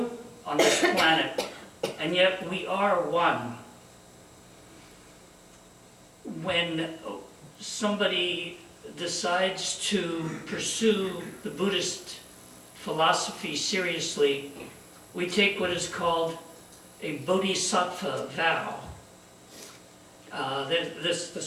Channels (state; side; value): identical; both; correlation 1.00